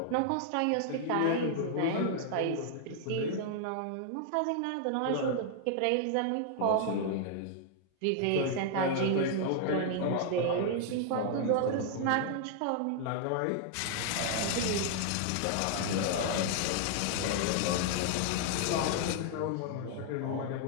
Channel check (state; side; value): different; both; correlation 0.00